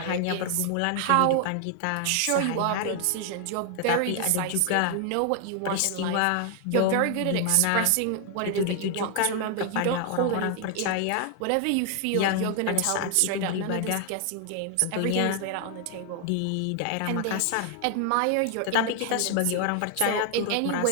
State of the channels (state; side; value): different; both; correlation 0.00